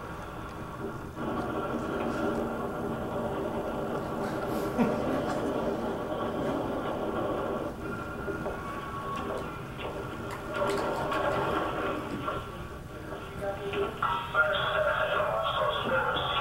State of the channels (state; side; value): identical; both; correlation 1.00